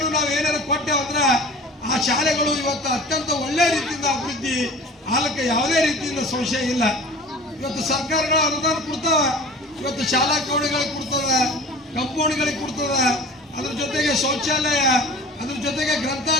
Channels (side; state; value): both; normal; correlation 0.41